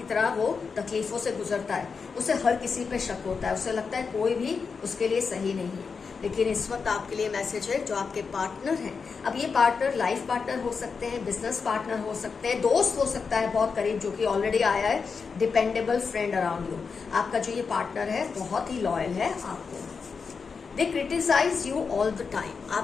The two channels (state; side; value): quieter; right; 5.3 dB